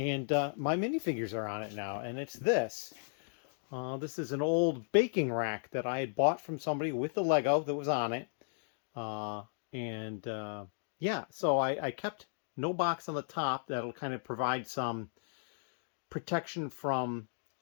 my minifigures are on it now. And it's this. This is an old baking rack that I had bought from somebody with the Lego that was on it. Yeah, so I kept no box on the top. That'll kind of provide some protection from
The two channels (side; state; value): right; silent; digital silence